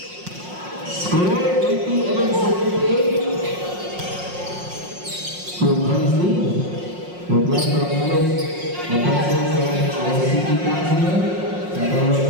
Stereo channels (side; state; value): left; late; 5.6 ms